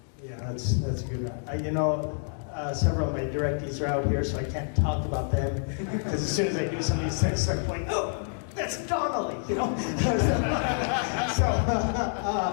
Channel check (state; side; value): silent; right; digital silence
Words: Yeah, that's a good one. Several of my directees are out here, so I can't talk about them, because as soon as I do some of these things, I'm like, oh, that's Donnelly, you know?